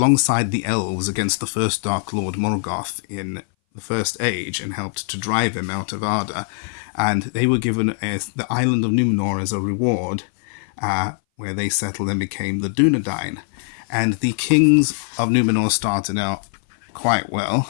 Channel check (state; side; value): silent; right; 60 dB below the other